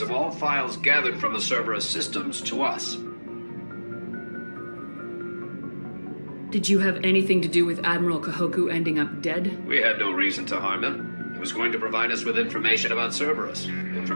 of all files gathered from the Cerberus systems to us. Did you have anything to do with Admiral Kahoku ending up dead? We had no reason to harm him. He was going to provide us with information about Cerberus.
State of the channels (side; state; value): both; inverted; correlation -1.00